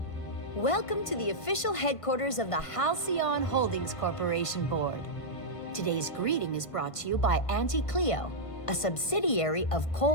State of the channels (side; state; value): right; late; 1.5 ms